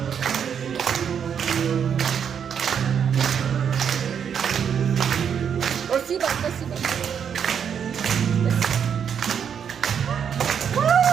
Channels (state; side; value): quieter; left; 7.8 dB